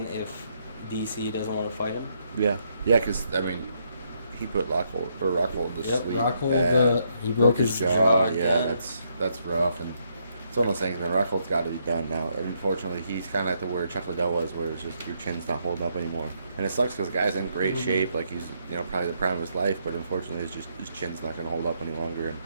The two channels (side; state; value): both; inverted; correlation -0.75